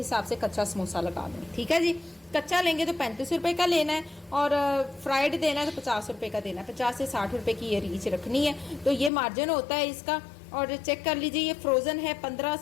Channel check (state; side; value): drops out; right; at 9.1 s